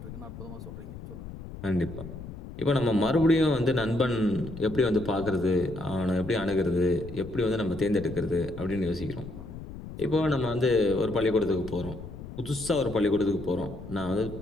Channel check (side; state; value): left; noise; rumble, 12 dB below the sound